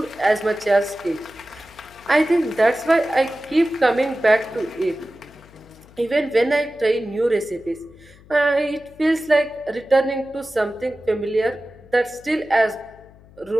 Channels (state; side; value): noise; left; hum, 24 dB below the sound